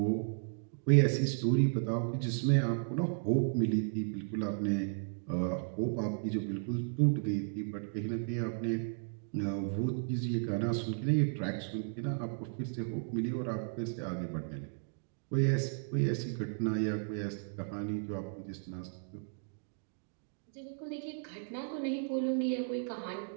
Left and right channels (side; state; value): left; silent; digital silence